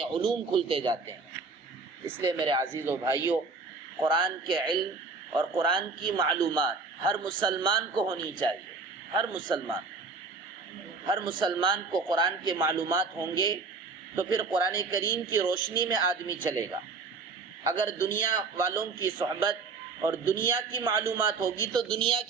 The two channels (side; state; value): left; quieter; 4.3 dB